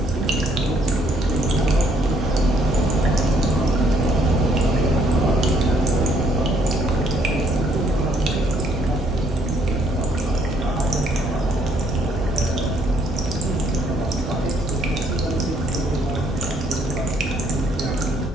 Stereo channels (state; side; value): normal; both; correlation 0.67